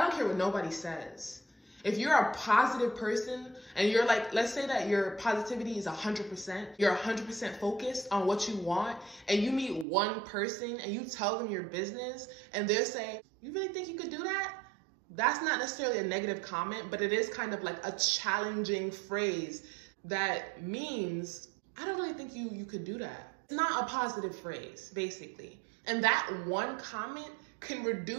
care what nobody says. If you're a positive person and you're like, let's say that your positivity is 100%, you're 100% focused on what you want, and you meet one person and you tell them your business and they'll say, you really think you could do that? That's not necessarily a negative comment, but it is kind of like a challenging phrase that means, I don't really think you could do that. It's not a positive phrase, basically. And that one comment can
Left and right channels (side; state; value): left; drops out; at 9.9 s